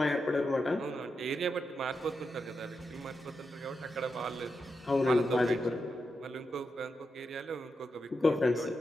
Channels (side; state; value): both; normal; correlation 0.87